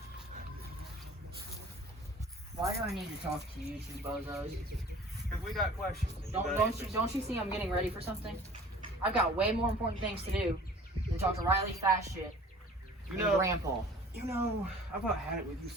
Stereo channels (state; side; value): normal; both; correlation 0.47